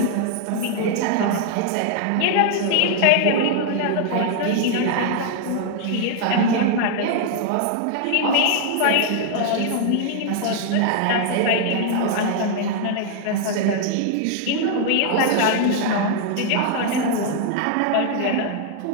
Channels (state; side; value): different; both; correlation 0.00